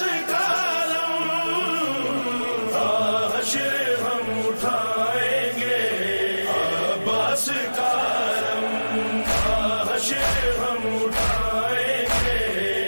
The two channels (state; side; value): inverted; both; correlation -1.00